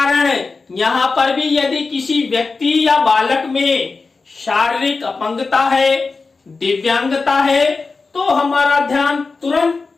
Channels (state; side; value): quieter; right; 4.2 dB